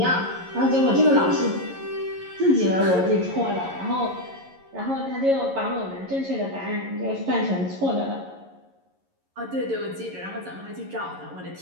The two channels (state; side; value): late; left; 11 ms